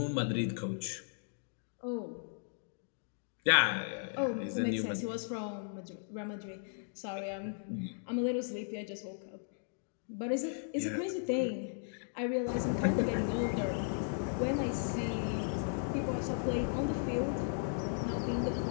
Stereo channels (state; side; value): silent; right; digital silence